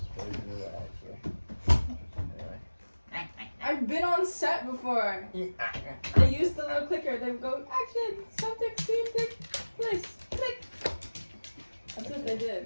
Really do that, actually. Anyway. I've been on set before. They used the little clicker. They would go, action, subject, scene, take place, click. That's what they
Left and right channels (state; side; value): inverted; both; correlation -1.00